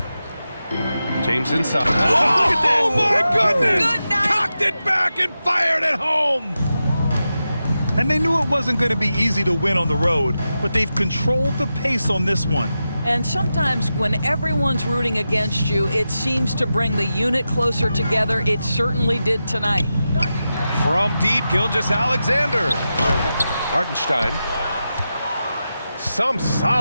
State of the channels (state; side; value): inverted; both; correlation -0.91